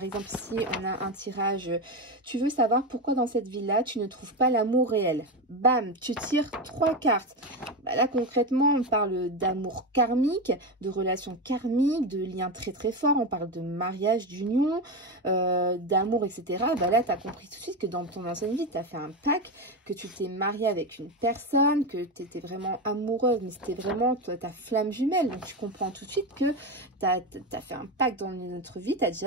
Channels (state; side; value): normal; both; correlation 0.16